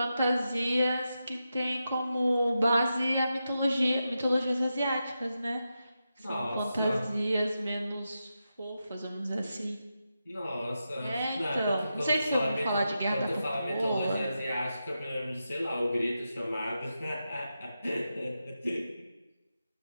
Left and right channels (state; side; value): inverted; both; correlation -0.89